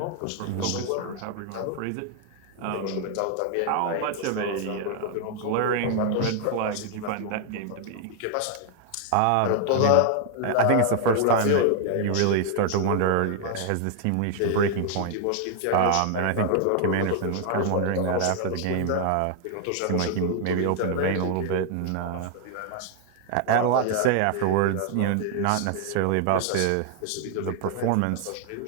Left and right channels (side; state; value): both; different; correlation 0.00